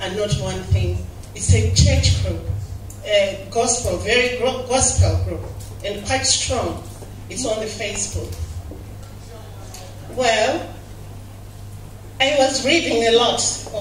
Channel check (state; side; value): identical; both; correlation 1.00